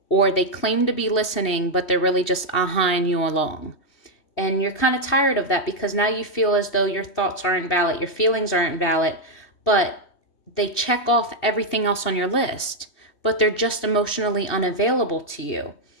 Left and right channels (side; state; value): right; late; 3.2 ms